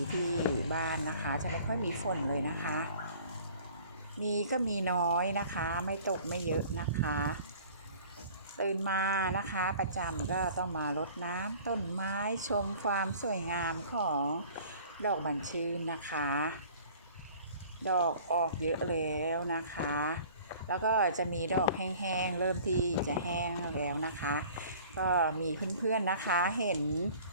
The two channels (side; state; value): both; inverted; correlation -0.48